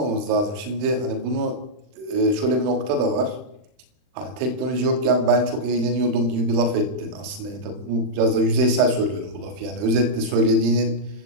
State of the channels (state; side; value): late; left; 39 ms